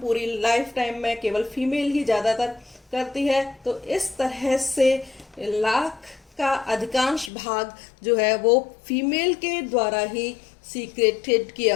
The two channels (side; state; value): right; drops out; at 7.3 s